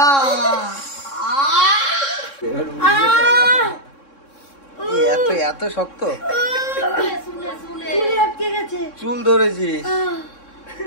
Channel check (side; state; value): right; late; 3.6 ms